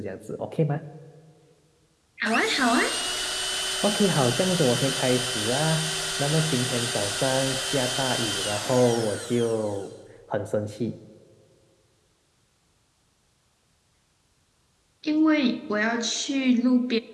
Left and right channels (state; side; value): identical; both; correlation 1.00